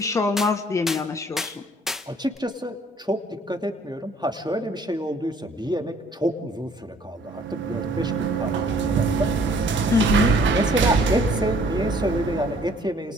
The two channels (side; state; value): both; normal; correlation 0.58